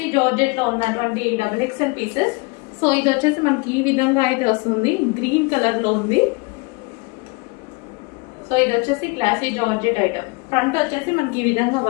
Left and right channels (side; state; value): right; quieter; 28.1 dB